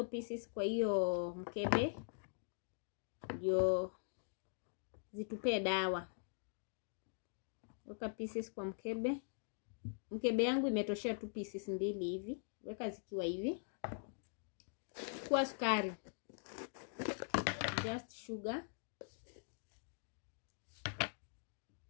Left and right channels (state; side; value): silent; right; digital silence